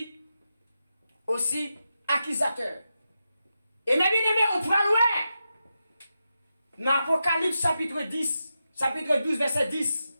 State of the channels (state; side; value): inverted; both; correlation -0.88